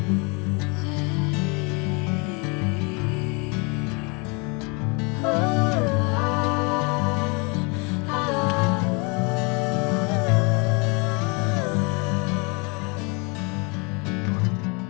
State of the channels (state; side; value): quieter; right; 31.4 dB